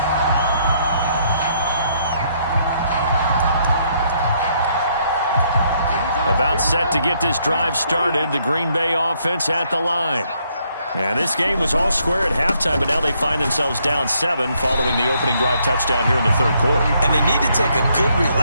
About set to get this drive started, the Green Bay offense at the line. And this game was all square at halftime, but now they find themselves down 7 following the opening drive touchdown here in the third quarter. And they need to take a good,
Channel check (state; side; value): inverted; both; correlation -0.71